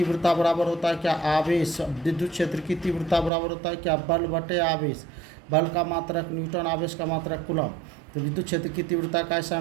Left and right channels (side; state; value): left; drops out; at 3.3 s